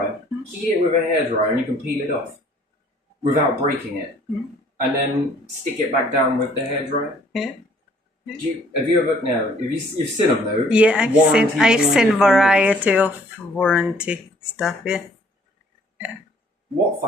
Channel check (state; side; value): normal; both; correlation 0.59